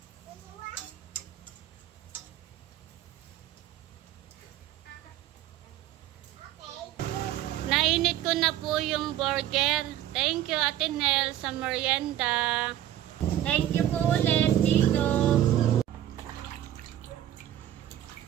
Nainit ko na po yung burger. Thank you, Ate Nel, sa merienda. Thank you po ulit, Tito.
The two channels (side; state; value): left; quieter; 12.2 dB